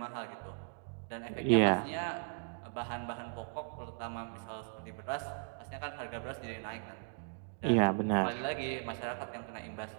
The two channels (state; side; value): silent; left; digital silence